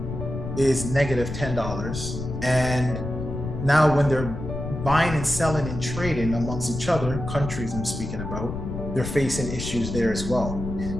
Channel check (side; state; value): left; noise; rumble, 6 dB below the sound